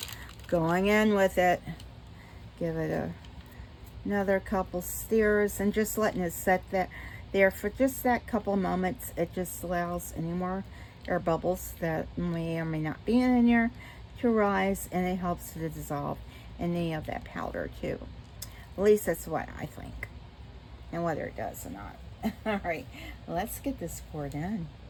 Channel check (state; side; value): identical; both; correlation 1.00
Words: going in with it. Give it another couple stirrs and just letting it set there for just that couple moments. It just allows any more air bubbles that may or may not be in there to rise, and it helps to dissolve any of that powder too. At least that's what I think, and whether it does or not. All right, let's get this poured in.